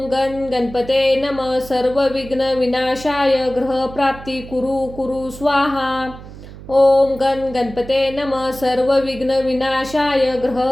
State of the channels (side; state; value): right; noise; hum, 15 dB below the sound